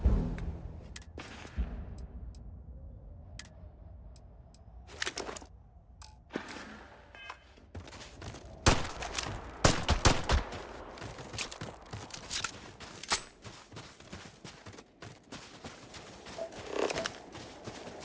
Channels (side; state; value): both; identical; correlation 1.00